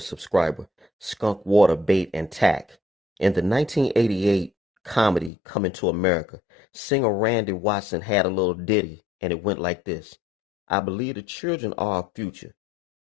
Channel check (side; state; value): right; drops out; at 5.3 s